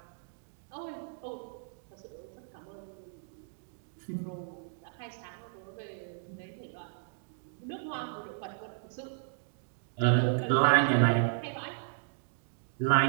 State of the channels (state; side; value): silent; left; digital silence